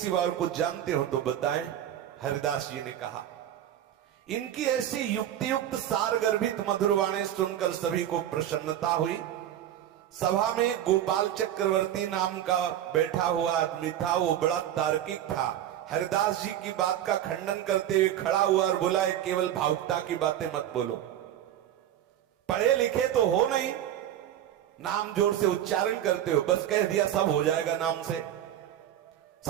और कुछ जानते हो तो बताएं। हरिदास जी ने कहा, इनकी ऐसी युक्ति युक्त सार गर्भित मधुर वाणी सुनकर सभी को प्रसन्नता हुई। सभा में गोपाल चक्रवर्ती नाम का बैठा हुआ आदमी था, वो बड़ा तार्किक था। हरिदास जी की बात का खंडन करते हुए खड़ा हुआ और बोला, केवल भावुकता की बातें मत बोलो, पढ़े लिखे तो हो नहीं, नाम जोर से उच्चारण करते हो, बस कह दिया सब हो जाएगा नाम से,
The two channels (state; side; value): quieter; left; 11.4 dB